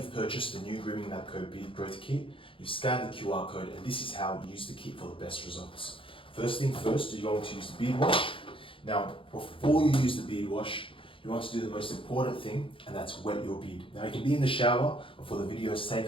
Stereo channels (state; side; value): late; right; 0.25 ms